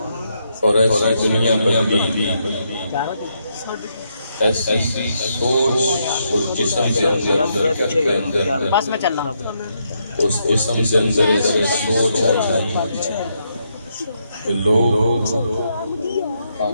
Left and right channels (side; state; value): both; inverted; correlation -0.78